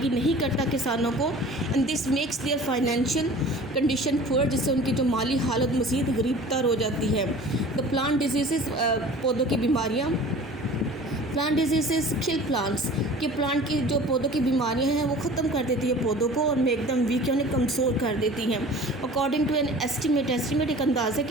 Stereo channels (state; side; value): normal; both; correlation 0.43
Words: नहीं करता किसानों को। And this makes there financial condition poor, जिससे उनकी जो माली हालत मज़ीद गरीबतर हो जाती है। द प्लांट डिजीज़, पौधों की बीमारियाँ, प्लांट डिजीज़ किल प्लांट्स, कि प्लांट की जो पौधों की बीमारियां हैं वो ख़त्म कर देती है पौधों को, और में एकदम वीक यानी कमज़ोर कर देती हैं। अकॉर्डिंग टू एन एस्टीमेट एक अंदाज़े